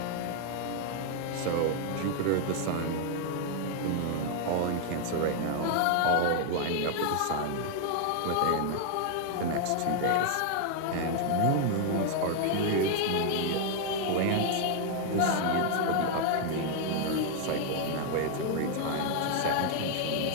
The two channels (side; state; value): both; different; correlation 0.00